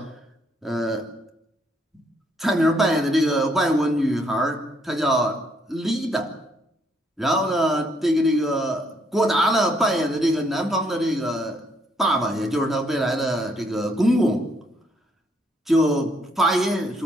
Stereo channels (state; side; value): normal; both; correlation 0.70